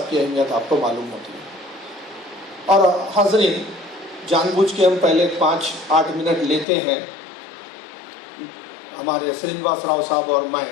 की अहमियत आपको मालूम होती है। और हाज़रीन, जानबूझ के हम पहले 5-8 मिनट लेते हैं हमारे श्रीनिवास राव साहब और मैं।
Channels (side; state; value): right; drops out; at 6.7 s